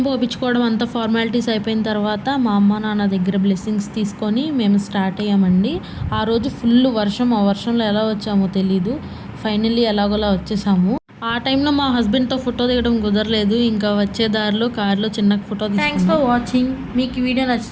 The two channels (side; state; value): both; identical; correlation 1.00